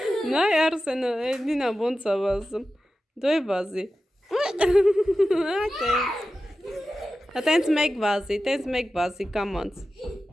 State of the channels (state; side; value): normal; both; correlation 0.93